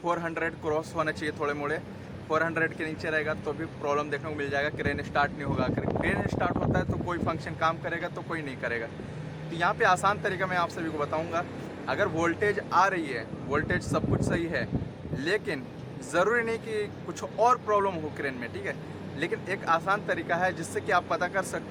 400 क्रॉस होना चाहिए, थोड़े मोड़े 400 के नीचे रहेगा तो भी प्रॉब्लम देखने को मिल जाएगा, क्रेन स्टार्ट नहीं होगा। क्रेन स्टार्ट होता है तो कोई फंक्शन काम करेगा तो कोई नहीं करेगा। तो यहाँ पे आसान तरीका मैं आप सभी को बताऊँगा। अगर वोल्टेज आ रही है, वोल्टेज सब कुछ सही है, लेकिन ज़रूरी नहीं कि कुछ और प्रॉब्लम हो क्रेन में, ठीक है। लेकिन एक आसान तरीका है जिससे कि आप पता कर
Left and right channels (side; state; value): both; identical; correlation 1.00